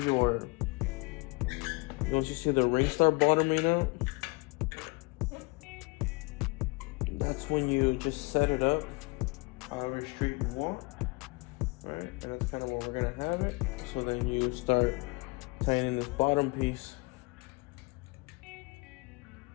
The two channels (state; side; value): quieter; right; 27.3 dB